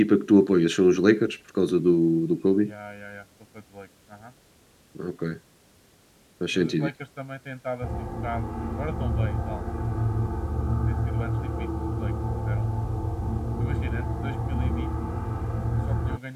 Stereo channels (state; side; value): identical; both; correlation 1.00